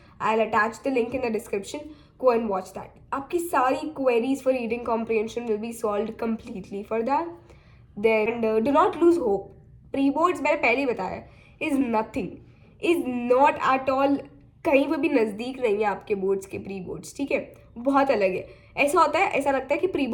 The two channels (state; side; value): identical; both; correlation 1.00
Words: I will attach the link in the description. Go and watch that. आपकी सारी queries for reading comprehension will be solve completely for that. Then do not lose hope. Pre boards मैंने पहले ही बताया, is nothing, is not at all, कहीं पर भी नज़दीक नहीं है आपके बोर्ड्स के प्री बोर्ड्स. ठीक है, बहुत अलग है. ऐसा होता है, ऐसा लगता है कि प्री